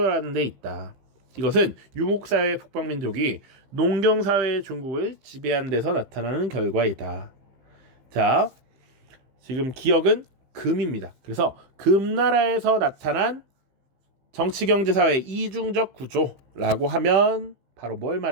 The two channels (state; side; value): late; left; 15 ms